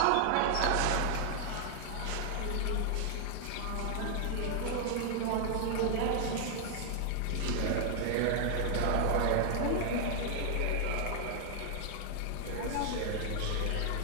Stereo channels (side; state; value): both; different; correlation 0.00